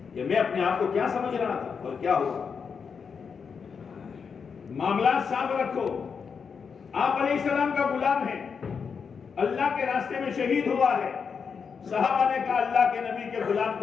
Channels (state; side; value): quieter; right; 6.0 dB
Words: کہ میں اپنے آپ کو کیا سمجھ رہا تھا اور کیا ہوا. معاملات صاف رکھو. آپ علیہ السلام کا غلام ہے, اللہ کے راستے میں شہید ہوا ہے. صحابہ نے کہا اللہ کے نبی کے غلام